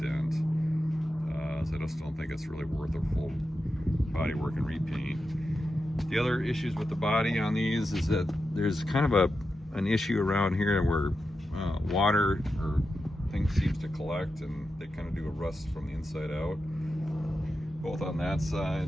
So I just don't think it's really worth a full body work and repaint. The other issues with the body on these is that there's kind of an issue around here where water or things seems to collect, and they kind of do a rust from the inside out, both on that side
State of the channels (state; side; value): normal; both; correlation 0.89